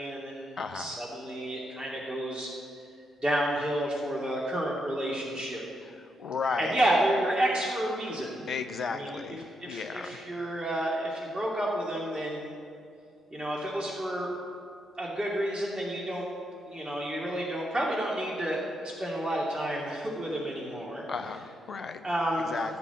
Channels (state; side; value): normal; both; correlation 0.81